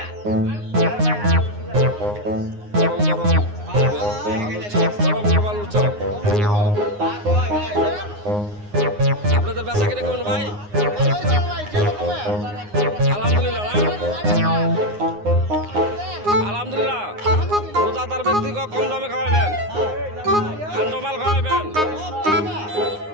আপনাদের বেচা কিনে কেমন ভাই? আলহামদুলিল্লাহ, আলহামদুলিল্লাহ। রোজাদার ব্যক্তিকে কম দামে খাওয়াবেন, ঠান্ডা মাল খাওয়াবেন।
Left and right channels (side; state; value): left; late; 9.6 ms